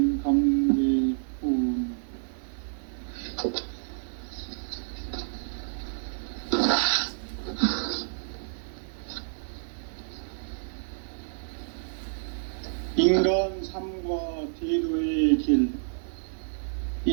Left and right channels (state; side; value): silent; left; digital silence